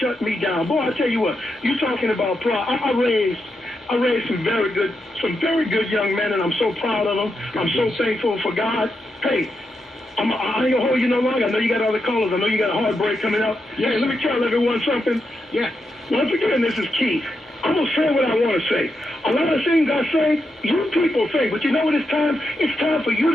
me down. Boy, I tell you what, you talking about pride. I raised some very good young men, and I'm so proud of them. I'm so thankful for God. Hey, I ain't gonna hold you no longer. I know you got other callers. I know you got a heartbreak coming up. Yeah, hey, let me tell everyone something. Yeah. Once again, this is Keith. I'm going to say what I want to say. A lot of things I say, you people say, but you know what it's time? It's time for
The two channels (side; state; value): both; normal; correlation 0.85